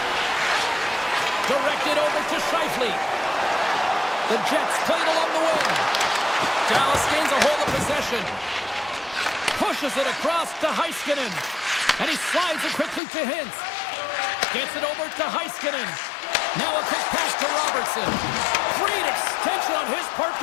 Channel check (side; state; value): right; drops out; at 13.0 s